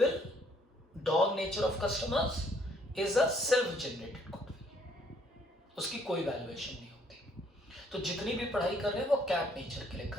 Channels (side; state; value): both; normal; correlation 0.65